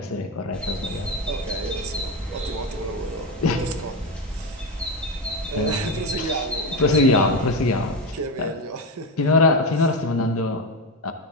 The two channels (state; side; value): normal; both; correlation 0.16